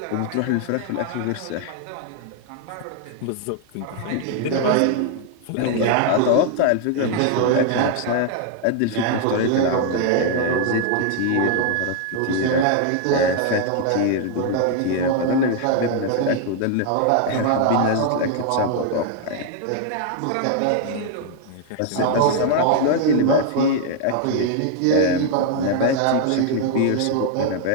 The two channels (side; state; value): both; different; correlation 0.00